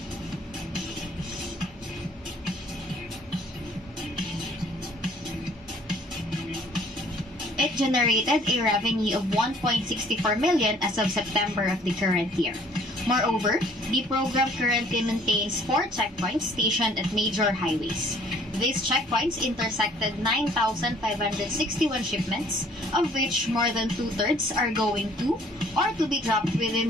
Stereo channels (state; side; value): normal; both; correlation 0.57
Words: It generated a revenue of 1.64 million as of September of the current year. Moreover, the program currently maintains 4 checkpoints stationed at major highways. These checkpoints intersected 9,561 shipments, of which more than 2/3 are going to or to be dropped